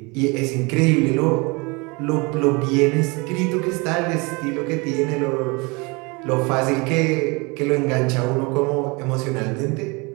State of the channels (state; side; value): quieter; left; 27.7 dB